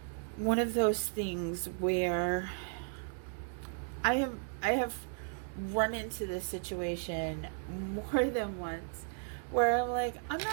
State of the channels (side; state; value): left; silent; 55 dB below the other